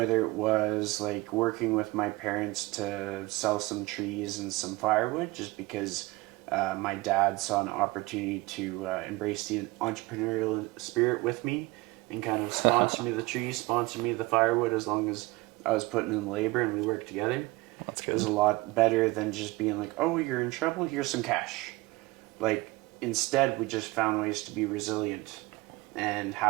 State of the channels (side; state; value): left; quieter; 21.3 dB